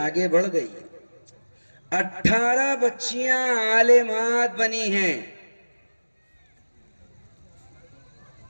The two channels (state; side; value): inverted; both; correlation -1.00